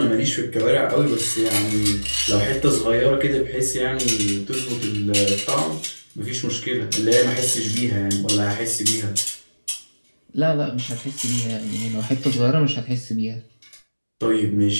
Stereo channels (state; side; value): inverted; both; correlation -1.00